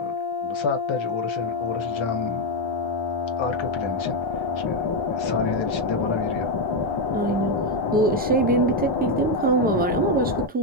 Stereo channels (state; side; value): normal; both; correlation 0.05